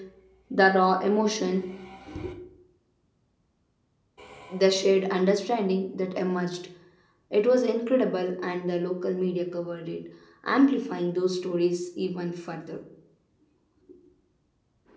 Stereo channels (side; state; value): both; identical; correlation 1.00